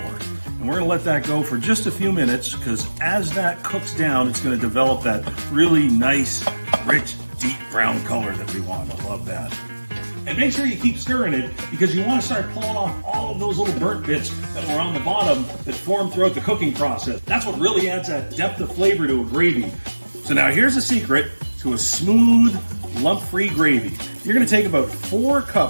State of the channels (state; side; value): inverted; both; correlation -1.00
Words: And we're gonna let that go for just a few minutes, because as that cooks down, it's gonna develop that really nice, rich, deep brown color that we want. I love that. And make sure you keep stirring it, because you wanna start pulling off all of those little burnt bits that were on the bottom that formed throughout the cooking process. That's what really adds that depth of flavor to a gravy. So now here's a secret to a smooth, lump-free gravy. You're gonna take about 4